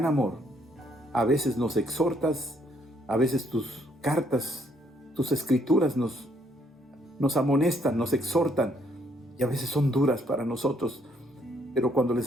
amor a veces nos exhortas, a veces tus cartas, tus escrituras nos amonestan, nos exhortan, y a veces son duras para nosotros, pero cuando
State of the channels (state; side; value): normal; both; correlation 0.69